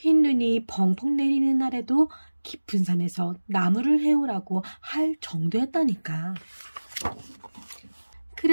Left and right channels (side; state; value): both; inverted; correlation -1.00